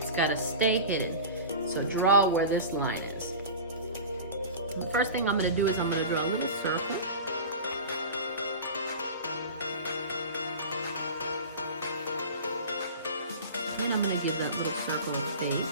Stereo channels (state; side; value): inverted; both; correlation -0.33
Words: got to stay hidden. So draw where this line is. The first thing I'm going to do is I'm going to draw a little circle. And I'm going to give that little circle a